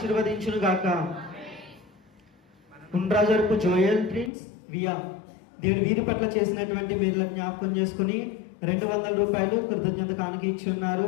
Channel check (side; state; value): right; drops out; at 4.3 s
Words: గాక. ఉండ్రాజవరపు జోయల్ ప్రిన్స్ వియా దేవుడు వీరి పట్ల చేసినటువంటి మేళ్ళను జ్ఞాపకం చేసుకుని 200 రూపాయలు కృతజ్ఞత కానుకిచ్చున్నారు.